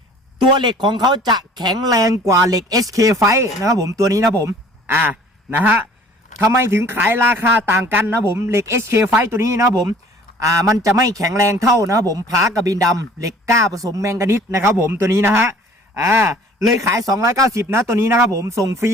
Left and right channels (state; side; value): normal; both; correlation 0.51